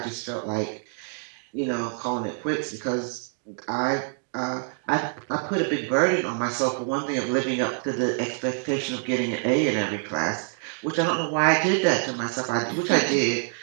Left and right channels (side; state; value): left; silent; 56 dB below the other